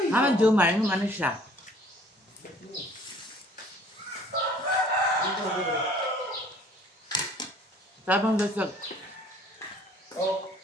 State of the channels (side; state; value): both; normal; correlation 0.55